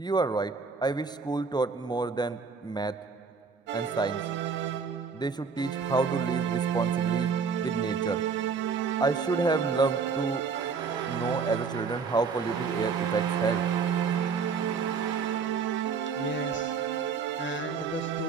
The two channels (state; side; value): quieter; left; 5.4 dB